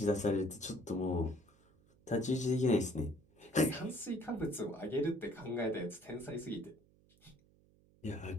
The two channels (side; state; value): right; noise; hum, 30 dB below the sound